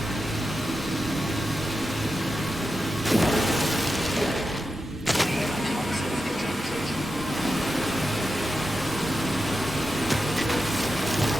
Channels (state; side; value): normal; both; correlation 0.90